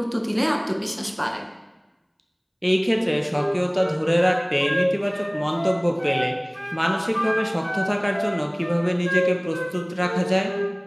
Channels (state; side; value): identical; both; correlation 1.00